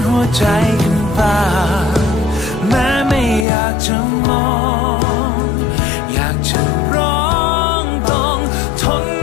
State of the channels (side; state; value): right; drops out; at 3.5 s